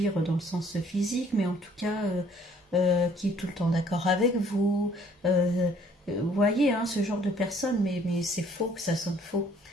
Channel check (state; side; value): normal; both; correlation 0.60